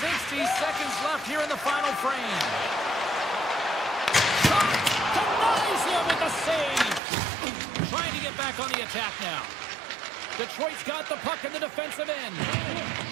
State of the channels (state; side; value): drops out; left; at 7.0 s